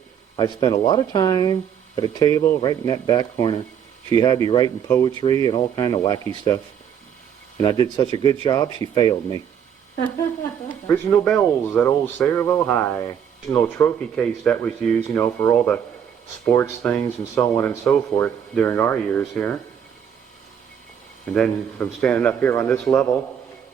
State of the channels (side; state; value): left; quieter; 8.5 dB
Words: I spent a lot of time at a table right in that back corner. She had me writing poetry and all kind of wacky stuff. And I did such a good job, she failed me. Original bells at old Sayreville High. Original trophy case that was used, you know, for all the sports things and so on and so forth during our years here. And then from standing up here on this level,